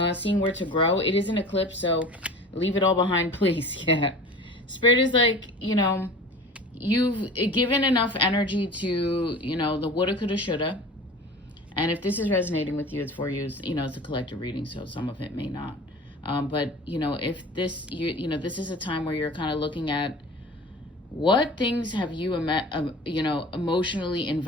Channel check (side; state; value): both; normal; correlation 0.39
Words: seeing where to grow. It is an eclipse, so leave it all behind, please. Yeah. Spirit is like, you've given enough energy to, the woulda, coulda, shoulda. And if this is resonating with you, it's for you. It's a collective reading, so some of it may not. But, if this, this is a time where you're kind of looking at what things have you, emotionally